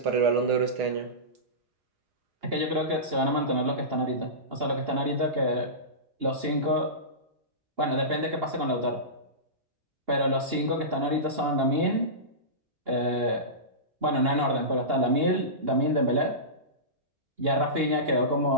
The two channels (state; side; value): late; left; 2.8 ms